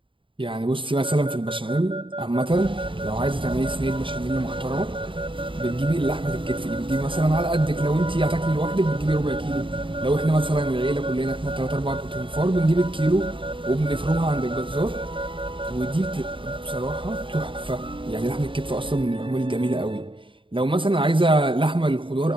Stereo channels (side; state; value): left; late; 0.25 ms